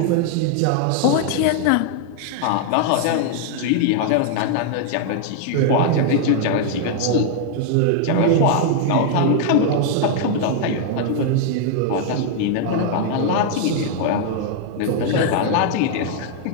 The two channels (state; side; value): different; both; correlation 0.00